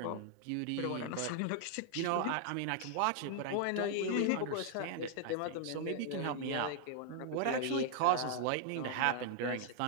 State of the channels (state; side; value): different; both; correlation 0.00